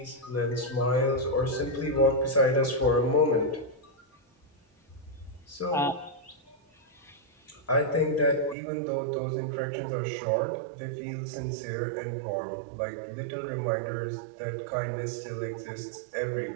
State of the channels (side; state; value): left; drops out; at 8.6 s